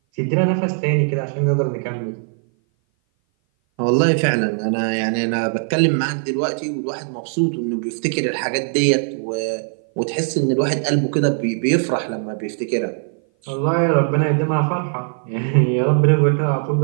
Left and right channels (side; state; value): left; silent; 57 dB below the other